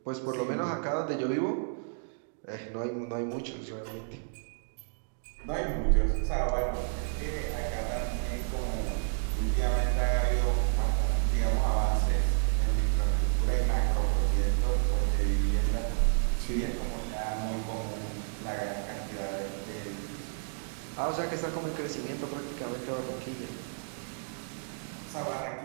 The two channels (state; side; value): silent; left; digital silence